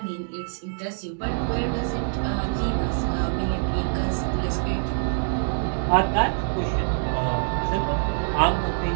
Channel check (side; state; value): left; silent; 62 dB below the other